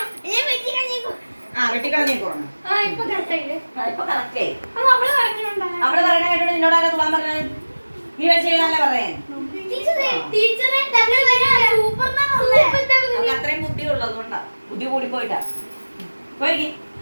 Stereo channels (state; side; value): inverted; both; correlation -1.00